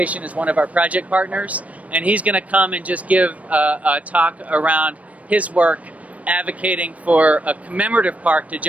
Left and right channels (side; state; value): left; late; 0.068 ms